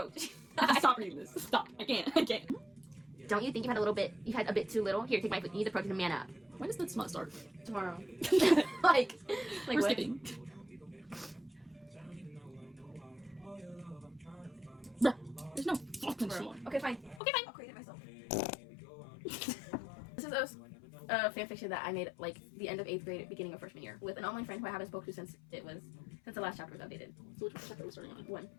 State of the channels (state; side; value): drops out; right; at 17.2 s